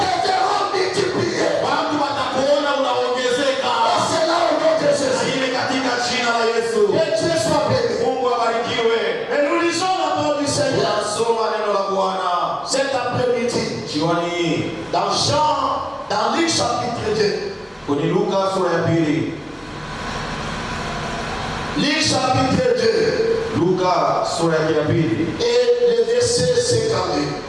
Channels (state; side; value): identical; both; correlation 1.00